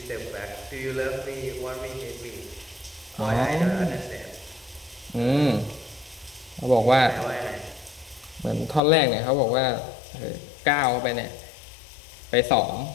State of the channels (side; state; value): right; drops out; at 8.8 s